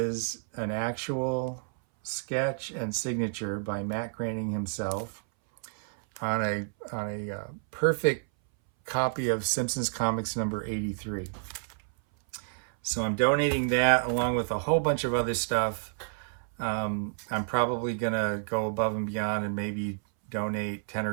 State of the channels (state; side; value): silent; left; 58 dB below the other